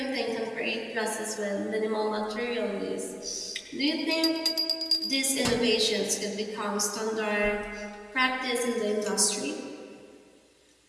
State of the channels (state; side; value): identical; both; correlation 1.00